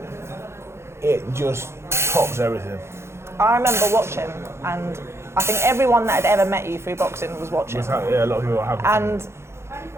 it just tops everything. I remember watching, and I think everyone that had ever met you through boxing was watching. Yeah, a lot of people are happy. And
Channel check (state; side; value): late; left; 0.13 ms